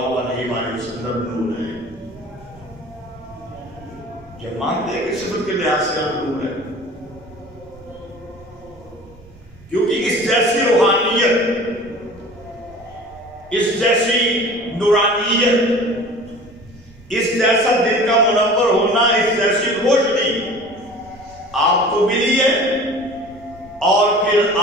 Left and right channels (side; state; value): right; noise; rumble, 24 dB below the sound